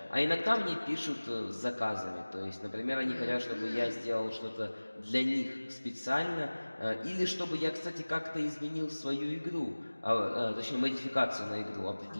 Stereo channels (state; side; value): inverted; both; correlation -1.00